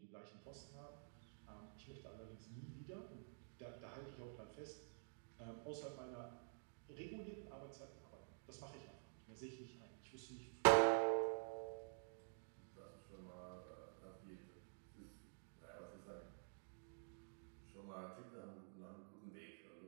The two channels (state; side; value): silent; left; digital silence